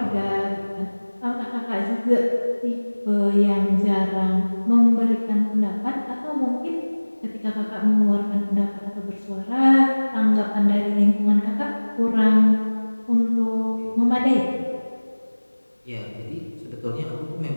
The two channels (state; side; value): inverted; both; correlation -1.00